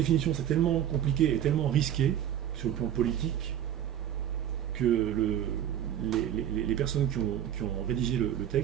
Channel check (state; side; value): quieter; left; 10.5 dB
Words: c'est tellement compliqué et tellement risqué sur le plan politique que les personnes qui ont rédigé le